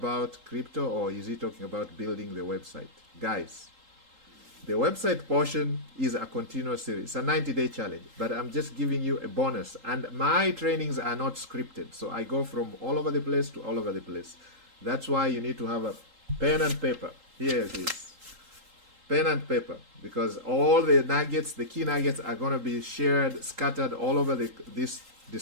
crypto or is he talking about building the website? Guys, the website portion is a continuous series. It's a 90-day challenge, but I'm just giving you a bonus. And my trainings are not scripted, so I go from all over the place to all over the place. That's why you need to have a pen and paper. Here it is. Pen and paper, because all the nuggets, the key nuggets, are going to be shared, scattered all over this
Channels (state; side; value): late; left; 3.8 ms